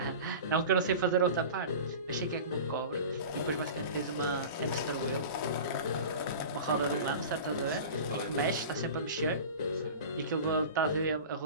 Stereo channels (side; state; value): both; inverted; correlation -0.35